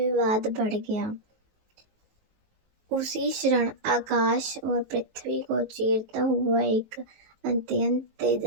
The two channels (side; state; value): left; late; 19 ms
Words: बढ़ गया। उसी क्षण आकाश और पृथ्वी को चीरता हुआ एक अत्यंत